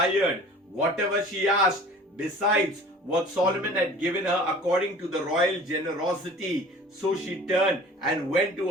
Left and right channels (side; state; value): both; normal; correlation 0.45